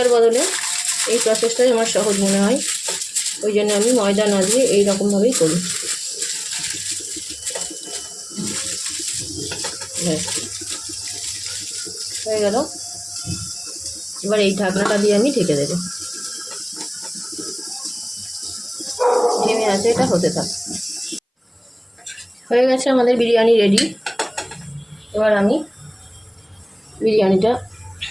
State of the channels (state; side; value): identical; both; correlation 1.00